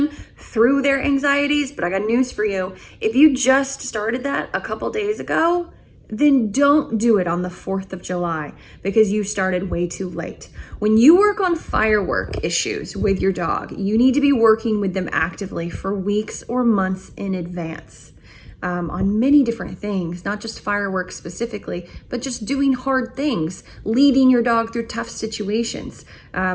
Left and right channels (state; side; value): identical; both; correlation 1.00